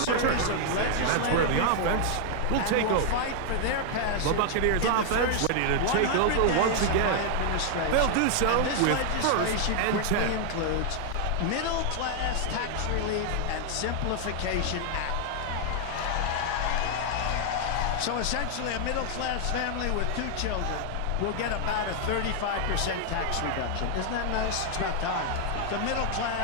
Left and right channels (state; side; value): different; both; correlation 0.00